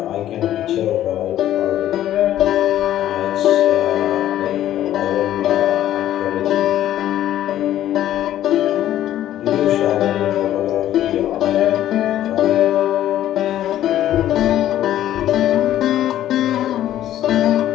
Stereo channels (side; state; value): right; quieter; 12.5 dB